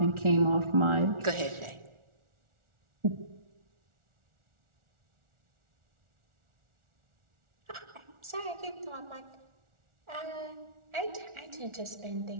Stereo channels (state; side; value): late; left; 1.4 ms